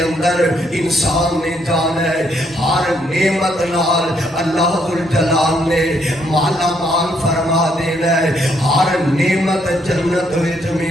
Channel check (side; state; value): both; normal; correlation 0.72